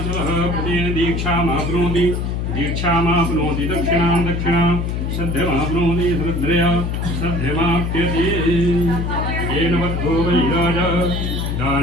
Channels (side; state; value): left; noise; hum, 1 dB below the sound